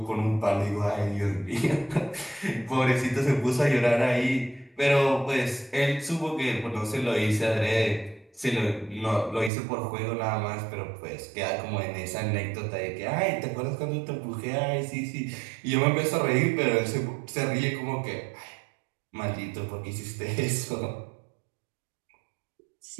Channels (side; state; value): left; drops out; at 9.5 s